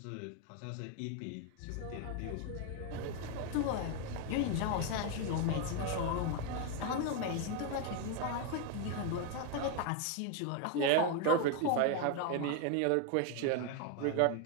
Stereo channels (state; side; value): different; both; correlation 0.01